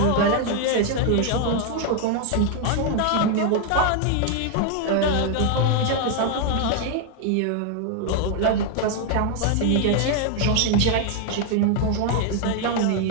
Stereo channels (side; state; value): both; different; correlation 0.00